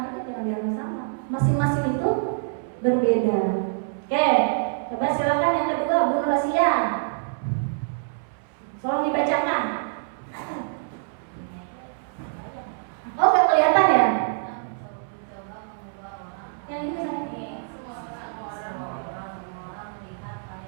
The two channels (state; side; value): silent; left; 61 dB below the other